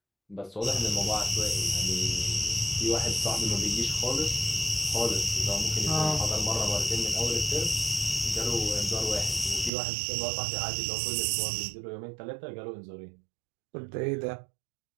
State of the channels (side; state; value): left; drops out; at 9.7 s